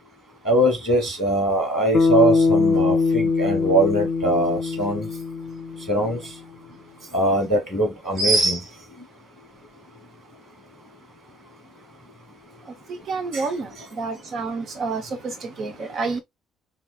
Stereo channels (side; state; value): both; normal; correlation 0.49